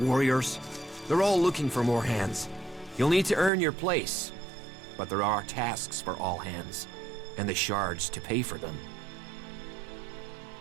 They're all looking for more hands. You'll need to earn your place. but there are tasks for all hands, and the shards to pay for them.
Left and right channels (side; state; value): left; drops out; at 3.5 s